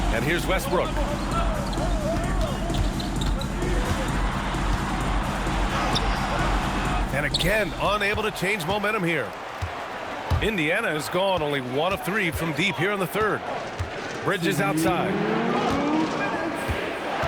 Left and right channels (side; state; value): both; identical; correlation 1.00